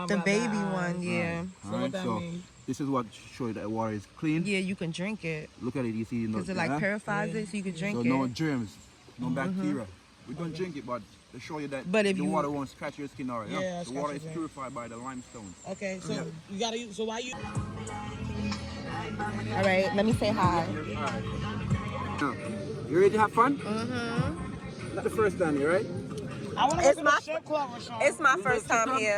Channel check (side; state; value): both; identical; correlation 1.00